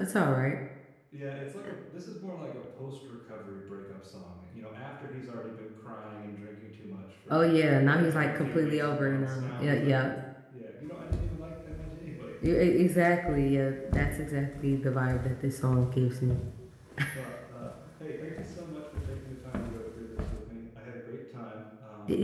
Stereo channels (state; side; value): identical; both; correlation 1.00